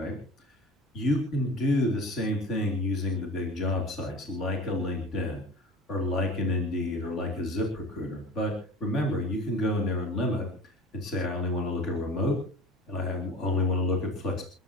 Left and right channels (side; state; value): both; normal; correlation 0.37